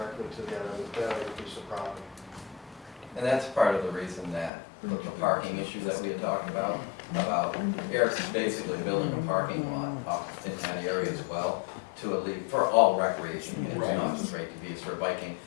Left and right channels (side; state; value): right; drops out; at 4.5 s